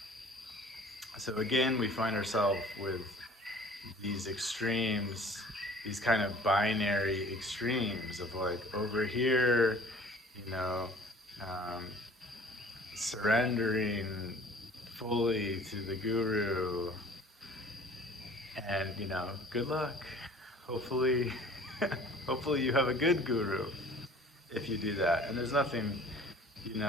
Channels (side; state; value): both; normal; correlation 0.49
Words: So again, we find ourselves with these extremes, these kind of binary extremes of like over here, you know, um, surrendering fully to the guru, and good luck. Hopefully, hopefully you have a good guru if you do that. And there's nothing,